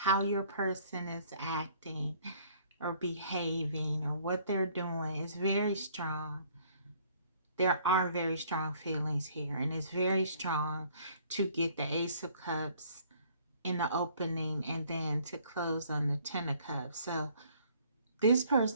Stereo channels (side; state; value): both; inverted; correlation -0.59